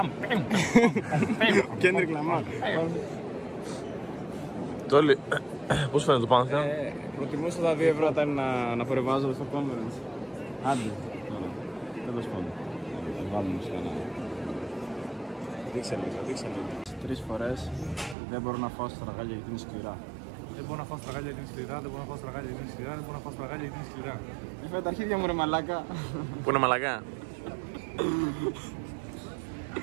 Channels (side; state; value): left; drops out; at 18.2 s